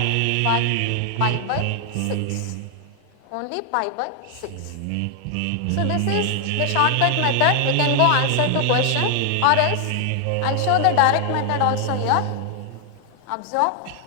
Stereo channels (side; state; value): both; different; correlation 0.00